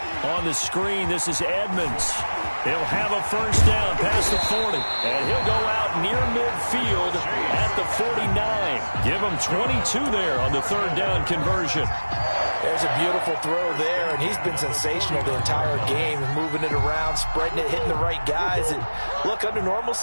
On the screen, this is Edmonds. He'll have a first down past the 40. And he'll go out near midfield at the 49. Give him 22 there on the 3rd down conversion. There's a beautiful throw there, and he's been sensational the entire game, moving it around, spreading it, hitting the right guys. And look, under normal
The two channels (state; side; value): inverted; both; correlation -1.00